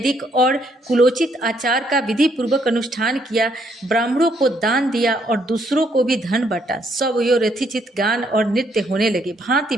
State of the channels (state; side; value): normal; both; correlation 0.71